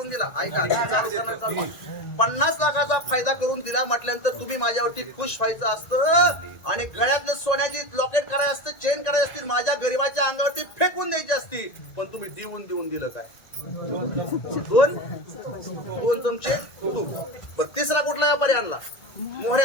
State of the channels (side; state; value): right; late; 1.9 ms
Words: दिला ऐका चालू करणार 50 लाखाचा फायदा करून दिला म्हटल्यानंतर तुम्ही माझ्यावरती खुश व्हायचं असतं आणि गळ्यातलं सोन्याची लॉकेट करायचं असतं चेन करायची असतील माझ्या गरीबाच्या अंगावरती फेकून द्यायची असती पण तुम्ही देऊन दिलं काय 2 चमचे तूप बरं तिसरा कुठला व्यापारी आणला